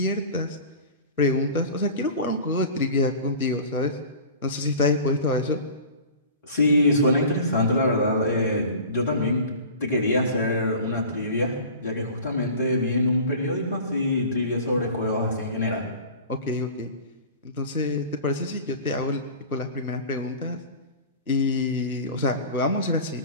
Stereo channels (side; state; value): both; inverted; correlation -0.38